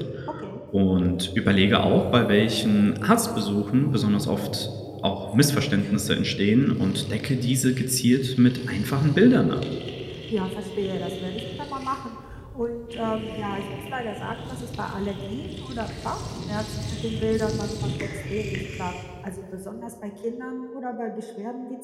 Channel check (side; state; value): both; identical; correlation 1.00